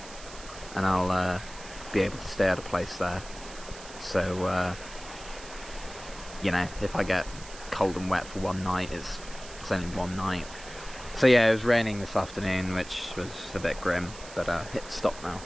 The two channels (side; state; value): right; noise; hiss, 16 dB below the sound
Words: and I'll be able to stay at a place there, so if I get cold and wet for one night, it's only one night. So yeah, it was raining this afternoon, which was a bit grim, but it's stopped now,